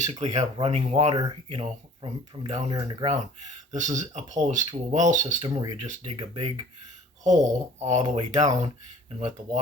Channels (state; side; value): normal; both; correlation 0.50